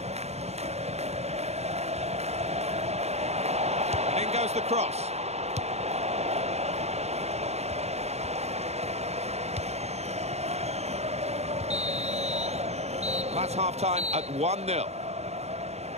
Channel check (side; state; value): left; late; 0.31 ms